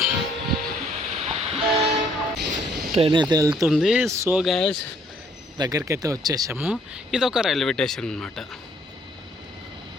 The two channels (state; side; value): normal; both; correlation 0.64